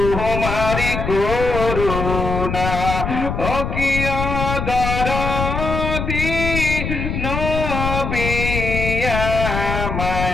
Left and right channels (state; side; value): noise; left; rumble, 3 dB below the sound